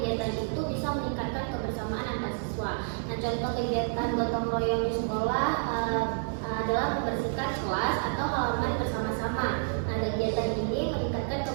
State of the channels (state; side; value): silent; left; digital silence